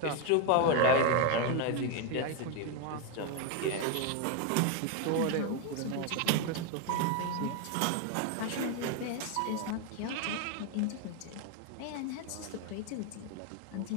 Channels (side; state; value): both; different; correlation 0.02